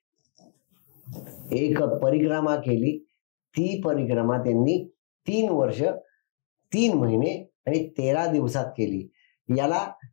एक परिक्रमा केली. ती परिक्रमा त्यांनी 3 वर्ष 3 महिने आणि 13 दिवसात केली. याला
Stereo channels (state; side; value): silent; right; 59 dB below the other